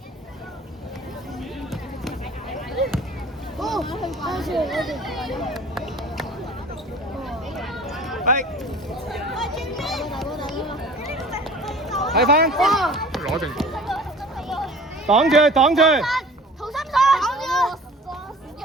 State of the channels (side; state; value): both; normal; correlation 0.45